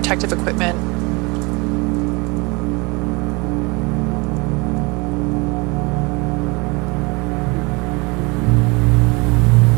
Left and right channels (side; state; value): left; quieter; 27.1 dB